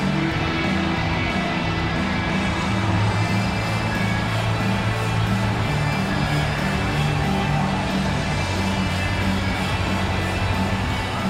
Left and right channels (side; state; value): both; identical; correlation 1.00